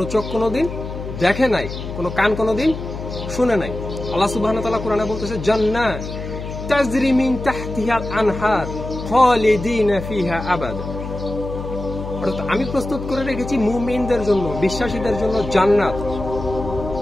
চোখ কোনোদিন দেখে নাই, কোনো কান কোনোদিন শুনে নাই। আল্লাহ সুবহানাহু ওয়া তাআলা কোরআনে বলতেছে, জান্নাত তাজরি মিন তাহতিহাল আনহার খালিদিনা ফিহা আবাদা। অর্থাৎ আমি প্রস্তুত করে রেখেছি মুমিনদের জন্য, বিশ্বাসীদের জন্য জান্নাত,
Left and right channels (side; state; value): left; noise; hum, 8 dB below the sound